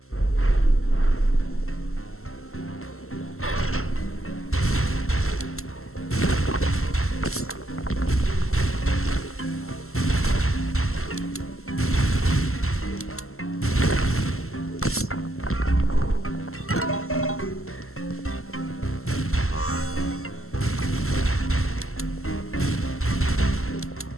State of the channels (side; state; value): right; late; 0.62 ms